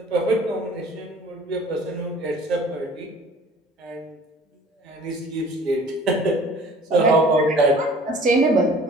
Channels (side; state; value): both; normal; correlation 0.49